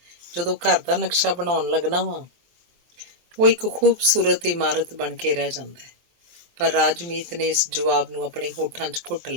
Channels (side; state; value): left; late; 23 ms